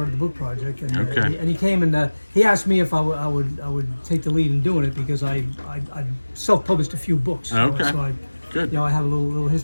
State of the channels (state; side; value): inverted; both; correlation -1.00